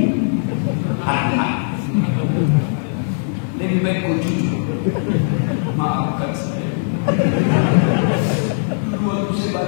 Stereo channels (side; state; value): right; silent; 65 dB below the other